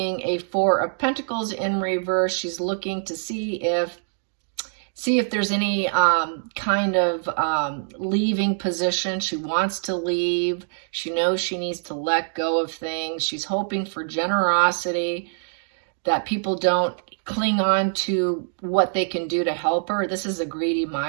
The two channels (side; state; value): left; silent; digital silence